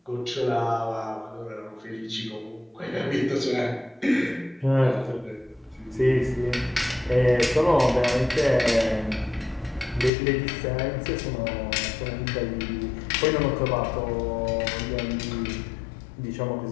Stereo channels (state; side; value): drops out; right; at 10.1 s